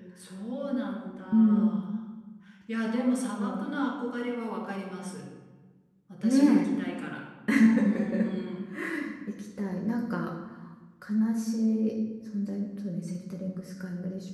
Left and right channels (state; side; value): identical; both; correlation 1.00